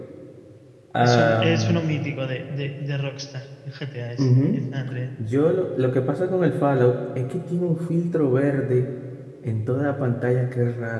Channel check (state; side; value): identical; both; correlation 1.00